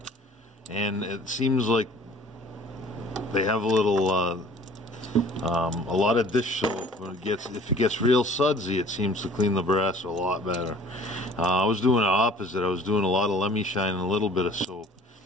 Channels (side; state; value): both; normal; correlation 0.50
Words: and it seems like they have a little, a lot of dish soap. When if it gets real sudsy, it seems to clean the brass a lot better. I was doing the opposite. I was doing a lot of LemiShine and a little bit of soap.